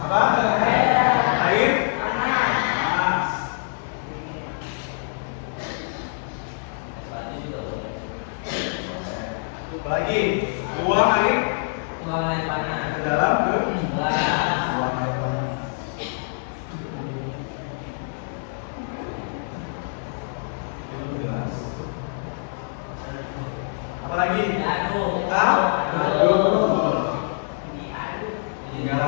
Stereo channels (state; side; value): silent; right; digital silence